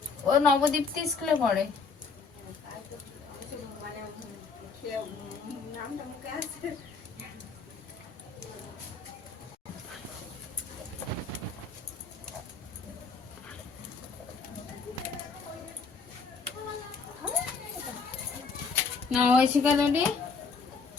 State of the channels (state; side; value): quieter; right; 4.8 dB